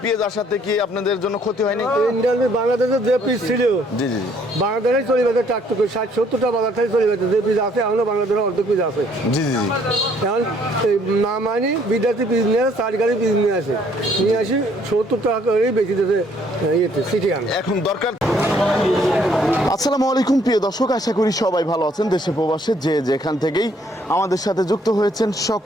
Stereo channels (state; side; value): normal; both; correlation 0.64